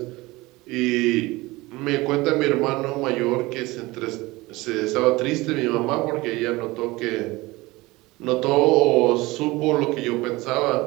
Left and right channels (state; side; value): quieter; left; 21.2 dB